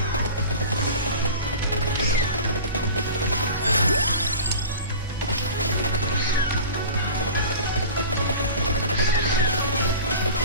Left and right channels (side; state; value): both; inverted; correlation -0.37